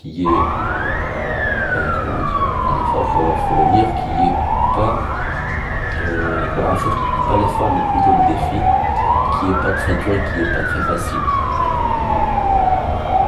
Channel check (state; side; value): identical; both; correlation 1.00